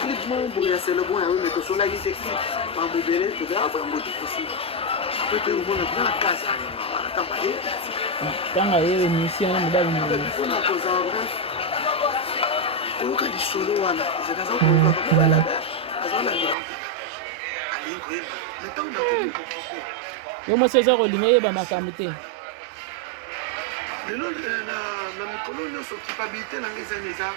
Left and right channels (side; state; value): left; drops out; at 16.6 s